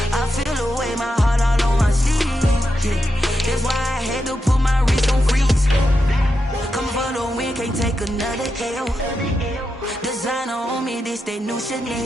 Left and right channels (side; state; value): both; normal; correlation 0.87